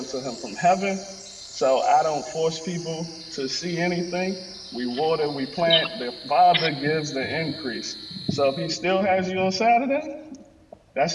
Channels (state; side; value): identical; both; correlation 1.00